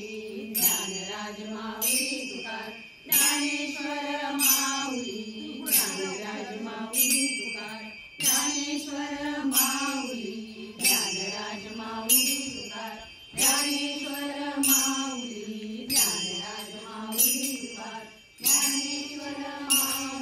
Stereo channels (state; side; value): identical; both; correlation 1.00